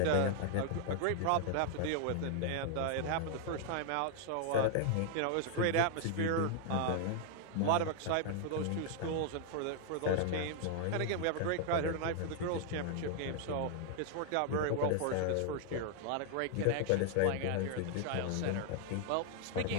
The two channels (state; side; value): different; both; correlation 0.00